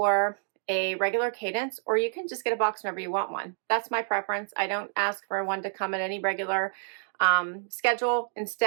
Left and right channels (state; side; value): silent; left; digital silence